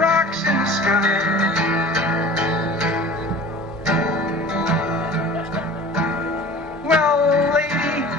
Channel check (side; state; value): both; normal; correlation 0.41